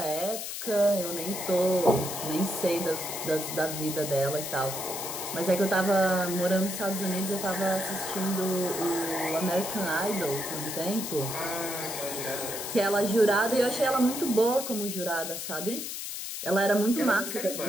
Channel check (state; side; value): noise; left; hiss, 6 dB below the sound